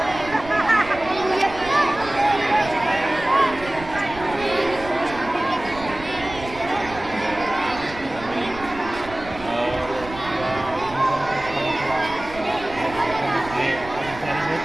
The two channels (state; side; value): noise; right; rumble, 15 dB below the sound